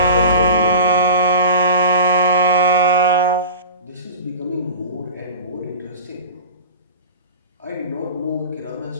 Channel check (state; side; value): inverted; both; correlation -0.34